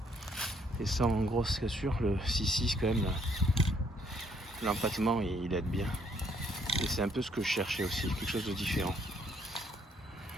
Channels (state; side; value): normal; both; correlation 0.68